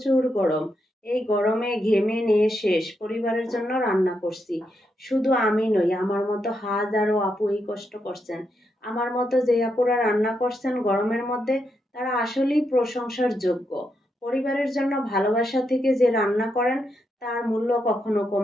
গরম। এই গরমে ঘেমে নিয়ে শেষ। পরিবারের জন্য রান্না করছি। শুধু আমি নই, আমার মতো হাজারো আপু এই কষ্ট করছেন। আমার মতো যে আপুরা রান্না করছেন গরমের মধ্যে, তারা আসলেই প্রশংসার যোগ্য। পরিবারের জন্য ভালোবাসা থেকে যে রান্না করেন তার মূল্য কখনো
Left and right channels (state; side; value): normal; both; correlation 0.82